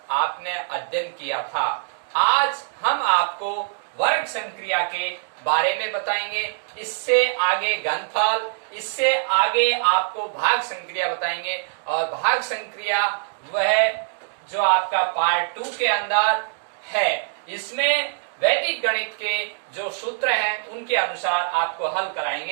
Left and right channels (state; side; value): silent; left; digital silence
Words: आपने अध्ययन किया था। आज हम आपको वर्ग संक्रिया के बारे में बताएंगे। इससे आगे घनफल, इससे आगे आपको भाग संक्रिया बताएंगे और भाग संक्रिया वह जो आपका पार्ट 2 के अंदर है। इसमें वैदिक गणित के जो सूत्र हैं उनके अनुसार आपको हल